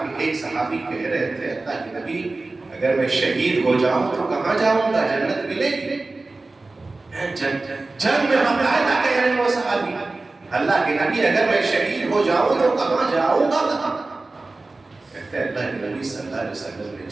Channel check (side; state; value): left; quieter; 3.3 dB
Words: کہ ایک صحابی کہہ رہے تھے اللہ کے نبی اگر میں شہید ہو جاؤں تو کہاں جاؤں گا؟ جنت ملے گی؟ جنگ میں باقاعدہ کہہ رہے ہیں وہ صحابی اللہ کے نبی اگر میں شہید ہو جاؤں تو کہاں جاؤں گا؟ کہتے ہیں اللہ کے نبی صلی اللہ علیہ وسلم نے